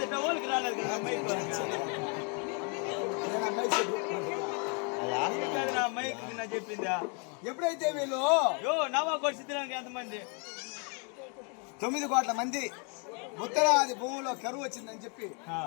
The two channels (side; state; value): right; quieter; 36.9 dB